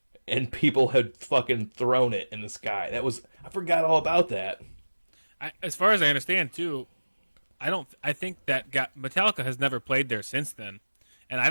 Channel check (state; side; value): inverted; both; correlation -1.00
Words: and people had fucking thrown it in the sky. I forgot all about that. As far as I understand, too, I think that Metallica has never played there since then, and I